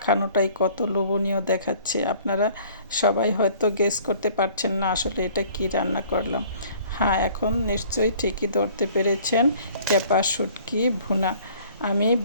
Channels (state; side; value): inverted; both; correlation -0.53